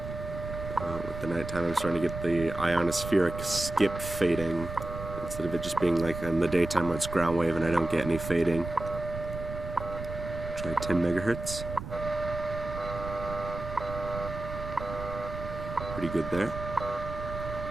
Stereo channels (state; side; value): noise; right; rumble, 9 dB below the sound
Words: With the nighttime, I'm starting to get the ionospheric skip fading instead of it just being like in the daytime when it's ground wave and I don't get any fading. Try 10 megahertz. Pretty good there.